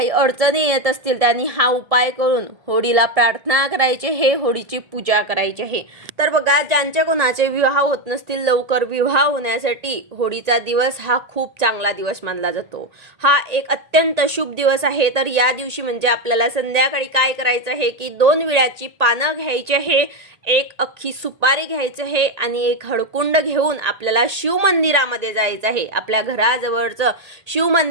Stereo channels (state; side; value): late; left; 1.8 ms